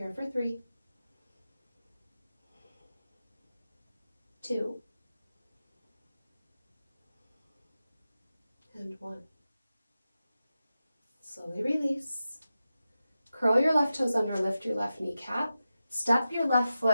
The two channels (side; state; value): both; inverted; correlation -0.92